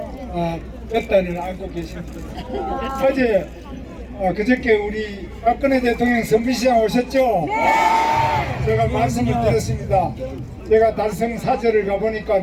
볕단을 안고 계십니다. 어제 그저께 우리 박근혜 대통령 선비시장 오셨죠? 제가 말씀을 드렸습니다. 제가 달성 사절을 가보니까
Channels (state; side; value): identical; both; correlation 1.00